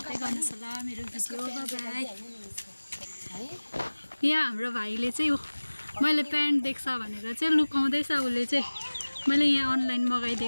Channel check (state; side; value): inverted; both; correlation -1.00